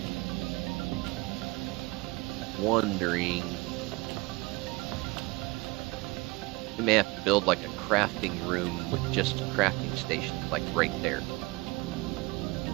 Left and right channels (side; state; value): left; quieter; 23.8 dB